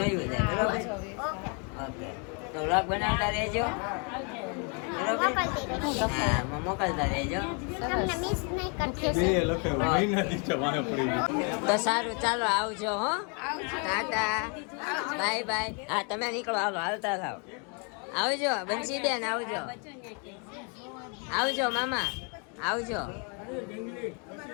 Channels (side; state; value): right; quieter; 36.9 dB